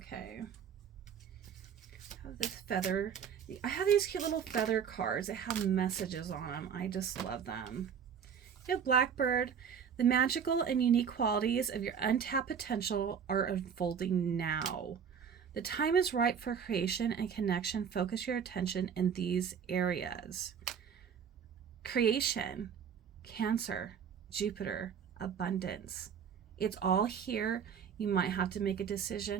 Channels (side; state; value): left; quieter; 7.4 dB